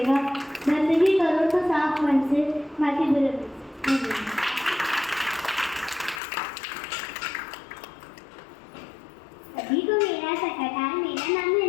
बंदगी करो तो साफ मन से, बाकी बुरे मन से। सभी को मेरा सत्कार। मेरा नाम है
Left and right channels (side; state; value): right; drops out; at 6.2 s